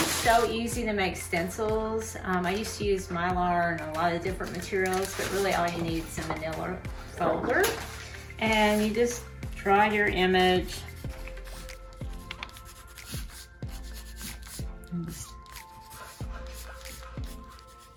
so easy to make stencils. I used to use Mylar and a lot of different materials, but really all you need is a manila folder. And you just draw your image.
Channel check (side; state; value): both; identical; correlation 1.00